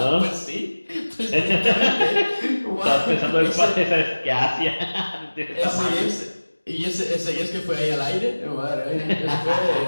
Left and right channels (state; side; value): inverted; both; correlation -1.00